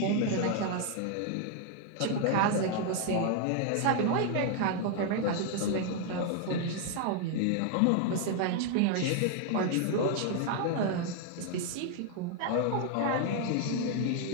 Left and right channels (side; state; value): both; different; correlation 0.00